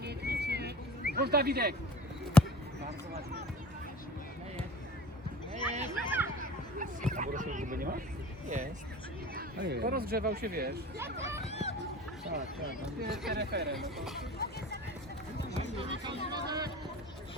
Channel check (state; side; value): normal; both; correlation 0.42